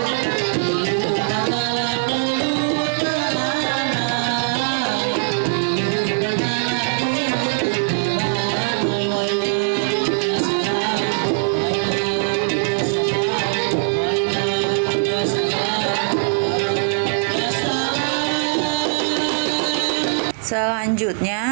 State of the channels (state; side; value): silent; left; digital silence